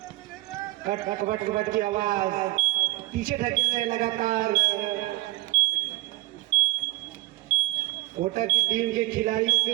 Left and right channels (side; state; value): left; quieter; 19.5 dB